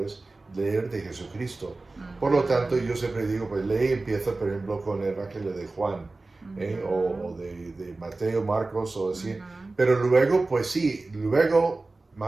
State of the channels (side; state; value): left; quieter; 3.3 dB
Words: leer de Jesucristo? Uh-huh. Por lo tanto, yo siempre digo, pues empieza, por ejemplo, con el Evangelio de Juan, o de Mateo, Marcos, o así, pero luego, pues sí, luego